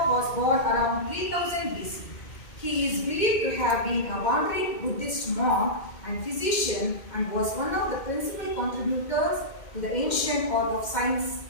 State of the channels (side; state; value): right; late; 2.1 ms